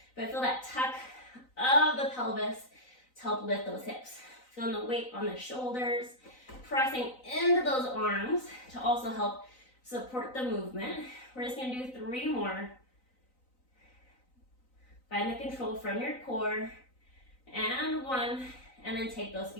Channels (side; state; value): right; late; 3.9 ms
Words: but feel that tuck of the pelvis to help lift those hips. Feeling the weight on the shoulders, pressing into those arms to also help support the movement. We're just gonna do 3 more. Find the control from your core, and 1, and then take those